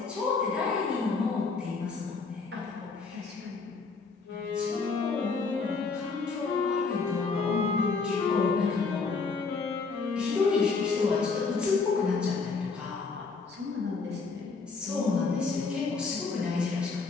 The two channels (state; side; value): quieter; right; 4.5 dB